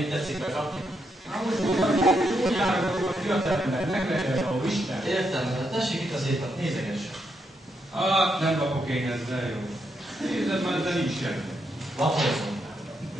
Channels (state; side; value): normal; both; correlation 0.80